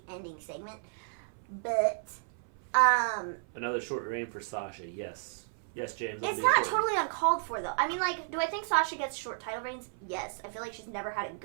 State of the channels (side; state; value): left; silent; 56 dB below the other